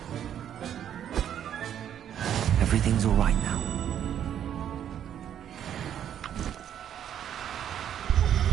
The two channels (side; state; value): left; quieter; 9.8 dB